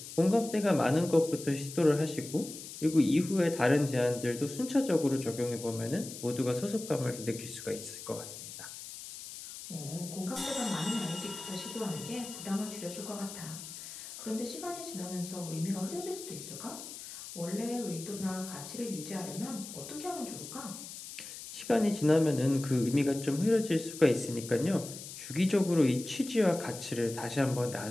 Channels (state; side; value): noise; left; hiss, 11 dB below the sound